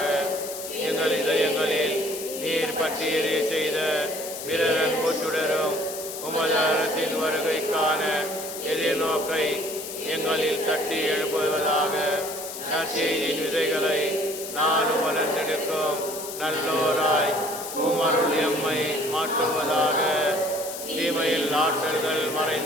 எங்கள் இதயங்களில் நீர் பற்றி எரிய செய்த பிறர் அன்பு சுடரும் உமது அரசின் வருகைக்கான எதிர்நோக்கை எங்களில் தட்டி எழுப்புவதாக நற்செய்தியின் விதைகளை நானும் வளர்ந்தெடுக்கும் நல்லோராய் உமருள் எம்மை மாற்றுவதாக. தீமையில் ஆற்றல்கள்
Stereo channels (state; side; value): noise; left; hiss, 9 dB below the sound